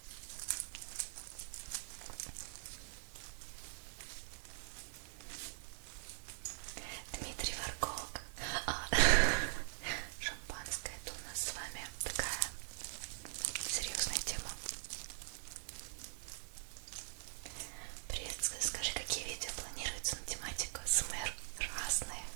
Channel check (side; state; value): left; silent; digital silence